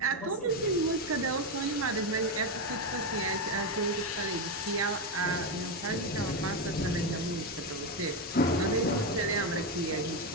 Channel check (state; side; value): normal; both; correlation 0.09